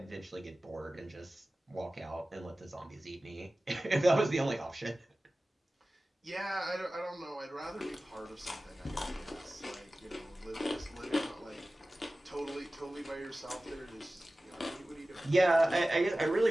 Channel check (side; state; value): both; normal; correlation 0.96